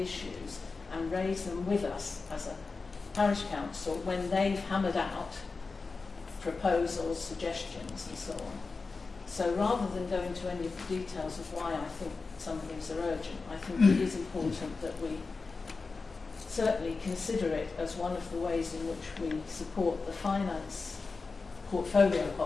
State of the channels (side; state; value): right; quieter; 4.2 dB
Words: issues and raise them with us as a parish council when they've hammered out proposals, suggestions and so on. So rather than go into any of the details of why I think some of these are urgent, I think it is important that we certainly consider it as one of the ways in which we support the finance portfolio